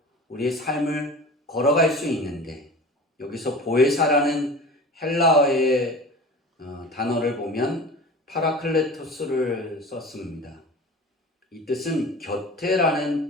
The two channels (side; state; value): both; normal; correlation 0.37